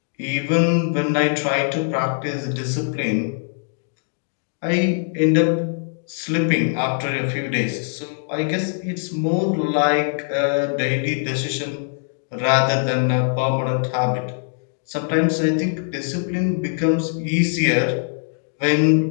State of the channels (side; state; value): right; silent; digital silence